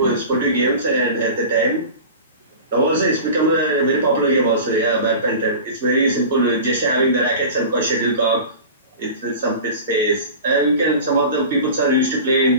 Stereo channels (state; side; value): inverted; both; correlation -0.35